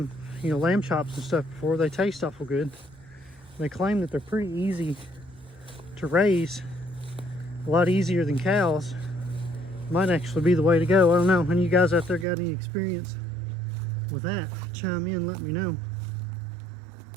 lamb chops and stuff before. They taste awful good. They claim that they're pretty easy to raise, a lot easier than cows. Might actually be the way to go. I don't know. Any of you guys out there got any experience with that? Chime in, let me know.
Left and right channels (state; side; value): drops out; left; at 12.2 s